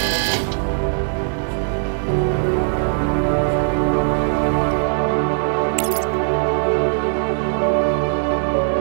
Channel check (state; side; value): silent; left; digital silence